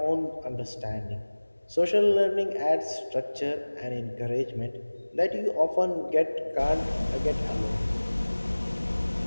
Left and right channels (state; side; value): inverted; both; correlation -1.00